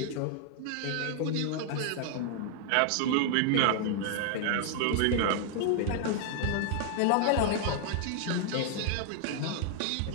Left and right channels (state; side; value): different; both; correlation 0.00